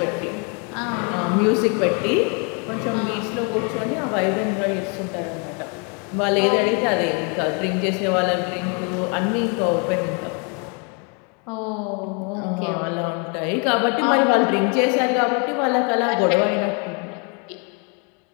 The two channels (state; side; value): quieter; right; 35.8 dB